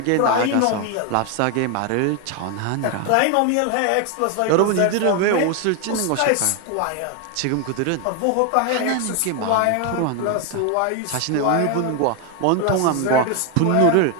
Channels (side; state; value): both; different; correlation 0.01